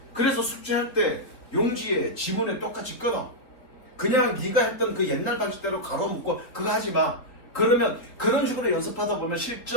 그래서 숙제할 때 용지에 지문에 똑같이 끊어. 그냥 네가 했던 그 옛날 방식대로 가로 묶고 그거 하지 마. 그러면 그런 식으로 연습하다 보면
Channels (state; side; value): late; right; 3.7 ms